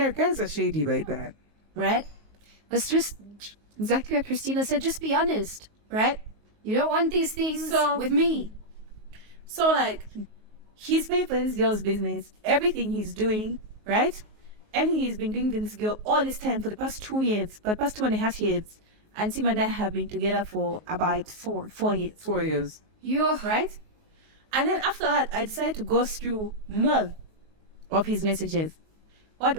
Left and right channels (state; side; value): late; left; 19 ms